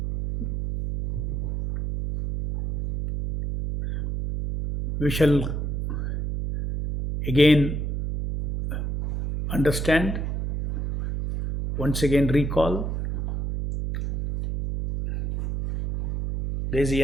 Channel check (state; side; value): noise; right; hum, 2 dB below the sound